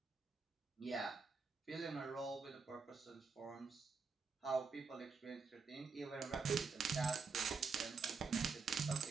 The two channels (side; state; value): left; quieter; 5.0 dB